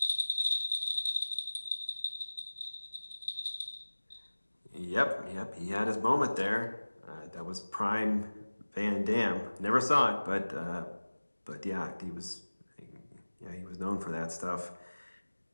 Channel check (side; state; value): both; inverted; correlation -1.00